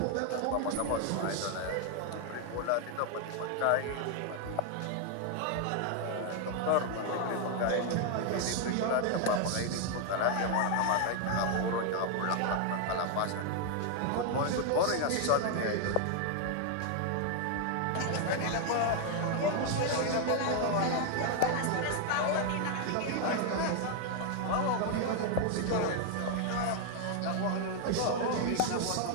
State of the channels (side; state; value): both; different; correlation 0.00